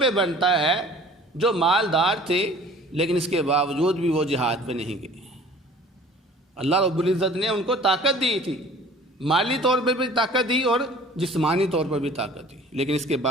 بنتا ہے جو مالدار تھے لیکن اس کے باوجود بھی وہ جہاد پہ نہیں گئے۔ اللہ رب العزت نے ان کو طاقت دی تھی، مالی طور پہ بھی طاقت دی اور جسمانی طور پر بھی طاقت دی، لیکن اس کے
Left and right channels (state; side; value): normal; both; correlation 0.48